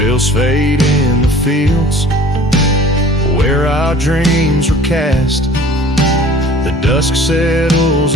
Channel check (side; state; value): both; normal; correlation 0.47